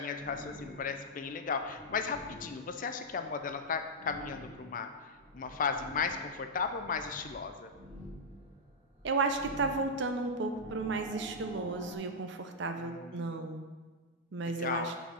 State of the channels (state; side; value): normal; both; correlation -0.06